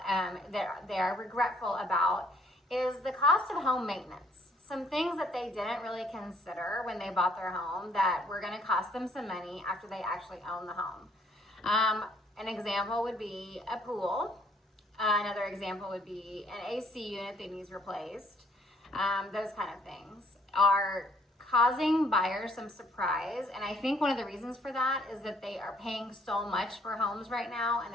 that they're regretful about is the cost of home maintenance. Some things that they didn't really consider when they bought their home that were going to cost them some money after they actually own the home. An example would be a pool. Another example would be an AC unit that needs replaced. Those kind of things are causing buyers some surprise. And I think one of the reasons for that is that they are paying so much for homes right now and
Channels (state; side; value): normal; both; correlation 0.63